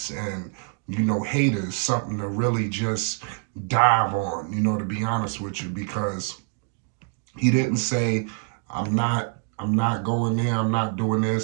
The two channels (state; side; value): quieter; left; 38.4 dB